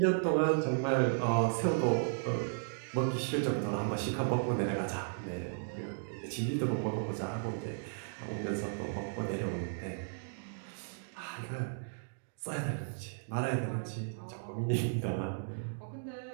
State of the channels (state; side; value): silent; left; digital silence